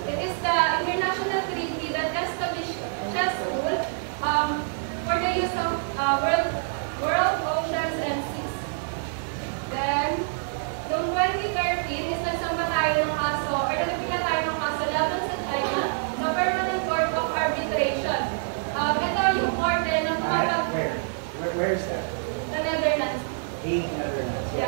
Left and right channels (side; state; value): left; silent; 61 dB below the other